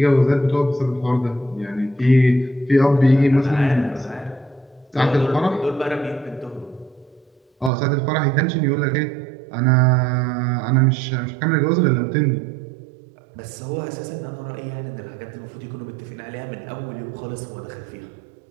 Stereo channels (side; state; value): left; drops out; at 7.7 s